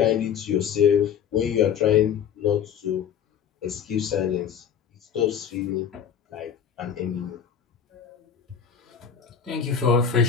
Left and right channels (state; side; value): quieter; right; 7.9 dB